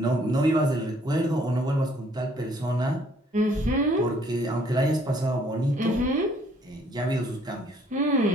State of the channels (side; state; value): both; normal; correlation 0.63